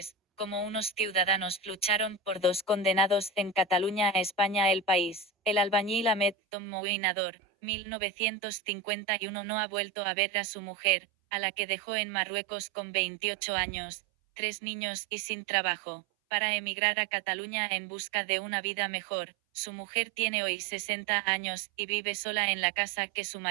como unos ciudadanos lucharon por dos condenados en Cataluña a España. El País. El albañil Ahmed Tommoui Nador, 1951, no ha vuelto a ver a su mujer, a la que dejó en Marruecos con 28 años, 3 niños y sin trabajo, para emigrar a Cataluña en busca de una vida mejor. Su mujer tiene hoy 60 años, y vive sola en la casa que su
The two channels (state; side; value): drops out; left; at 6.4 s